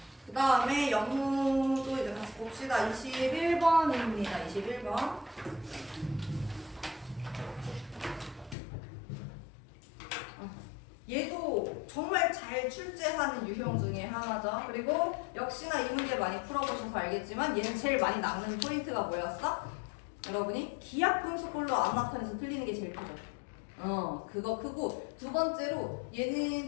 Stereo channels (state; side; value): drops out; right; at 8.6 s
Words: 그 다음에 영문도 이제 같이 봅시다. 21번입니다. 21번. 얘도 정말 잘 출제하는 유형 중에 하나죠. 그리고 역시나 이 문제 많이 풀어보셔서 알겠지만 얘는 제일 많이 남는 포인트가 뭐였어? 여러분이 기하분수꼴로 안 나타내서 틀리는 게 제일 크죠. 그거 크고 두 번째로